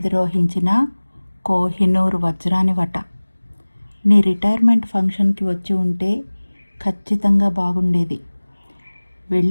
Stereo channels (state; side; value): inverted; both; correlation -1.00